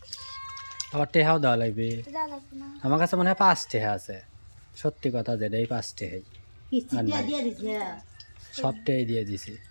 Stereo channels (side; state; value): both; inverted; correlation -1.00